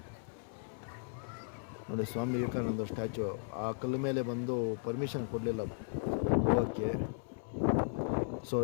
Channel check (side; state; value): right; silent; 54 dB below the other